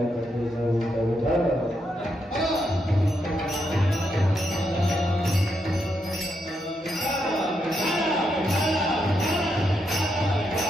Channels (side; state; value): both; normal; correlation 0.81